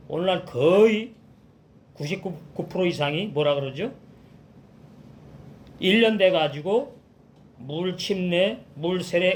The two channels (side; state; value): both; identical; correlation 1.00